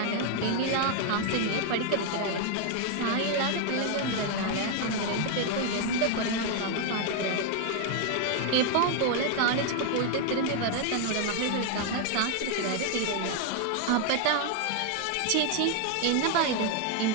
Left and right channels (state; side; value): different; both; correlation 0.00